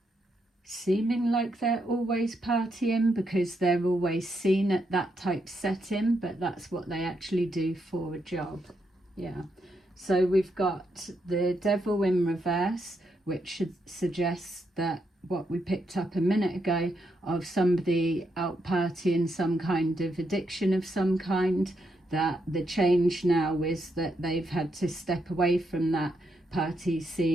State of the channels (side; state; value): both; normal; correlation 0.80